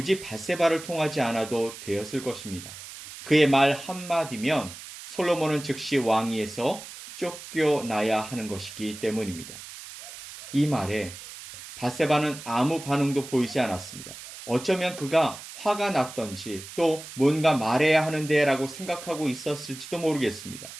밧세바를 통하지 않아도 되었을 것입니다. 그의 말 한마디면 솔로몬은 즉시 왕위에서 쫓겨나야 하는 것이기 때문입니다. 이 말에 밧세바는 아무 반응도 보이지 않았습니다. 어쩌면 그가 화가 났던지 또 뭔가 말해야 하는데 라고 생각하고 있었을지도 모르겠습니다.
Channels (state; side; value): noise; right; hiss, 13 dB below the sound